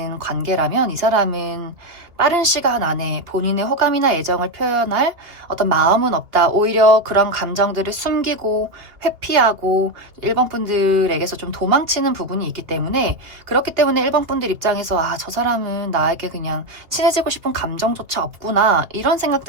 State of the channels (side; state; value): left; late; 2.9 ms